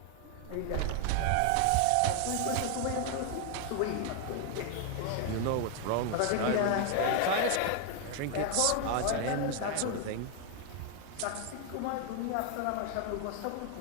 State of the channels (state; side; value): different; both; correlation 0.00